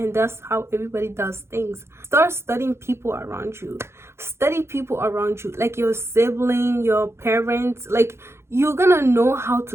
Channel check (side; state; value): left; late; 0.13 ms